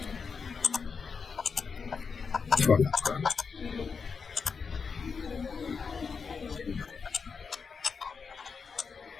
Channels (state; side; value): quieter; right; 5.5 dB